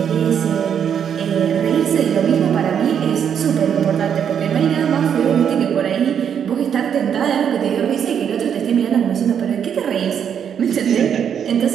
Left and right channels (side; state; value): left; quieter; 8.2 dB